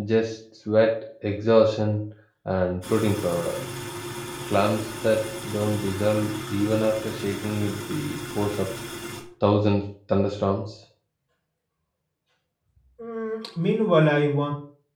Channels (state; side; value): identical; both; correlation 1.00